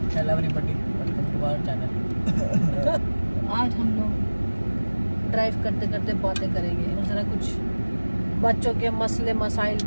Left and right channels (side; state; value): both; inverted; correlation -1.00